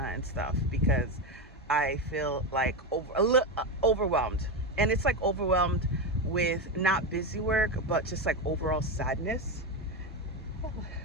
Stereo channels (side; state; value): both; normal; correlation 0.13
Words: and stuff because I feel like overwhelmed. And it's like overwhelmed with not busy work, but just like overall sadness,